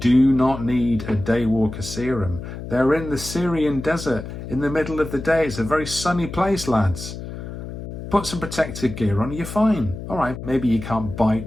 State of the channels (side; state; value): left; noise; hum, 9 dB below the sound